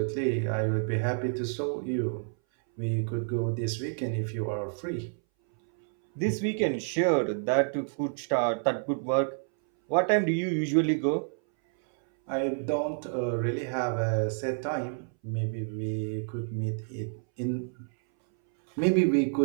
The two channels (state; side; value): silent; left; 59 dB below the other